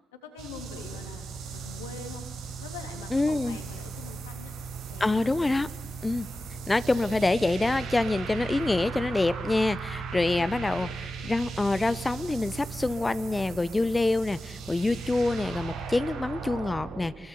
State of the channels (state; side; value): normal; both; correlation 0.94